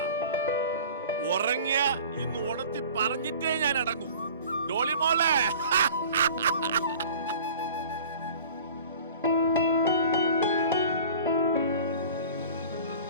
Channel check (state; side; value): inverted; both; correlation -0.44